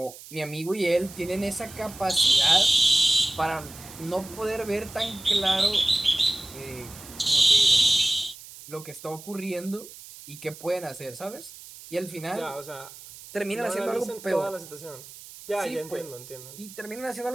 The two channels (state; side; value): noise; right; hiss, 17 dB below the sound